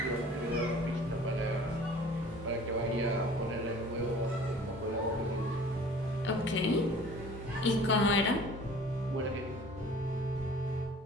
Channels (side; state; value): both; normal; correlation 0.47